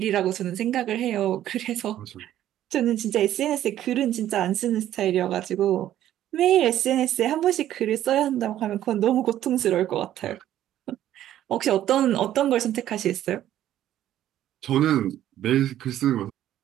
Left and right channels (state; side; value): quieter; left; 12.3 dB